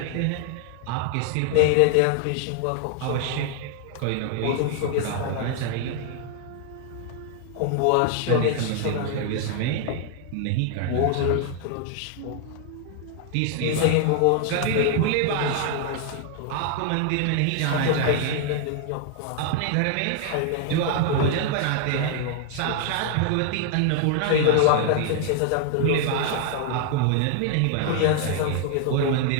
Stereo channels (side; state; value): both; different; correlation 0.00